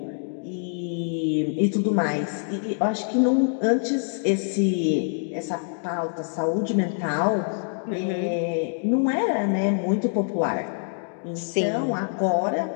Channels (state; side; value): silent; right; digital silence